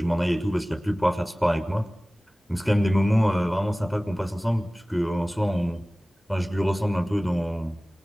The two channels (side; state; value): both; normal; correlation 0.98